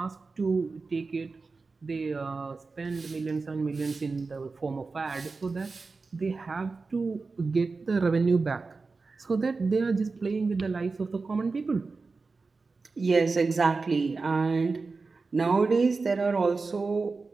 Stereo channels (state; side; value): quieter; left; 4.1 dB